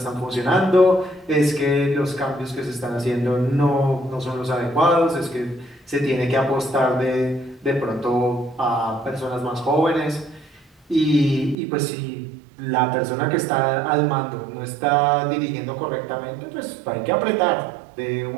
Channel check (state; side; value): drops out; left; at 11.6 s